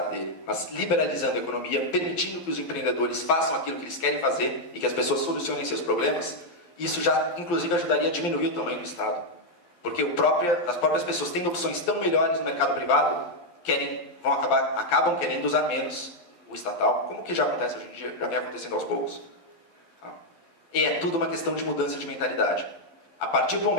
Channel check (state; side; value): late; right; 12 ms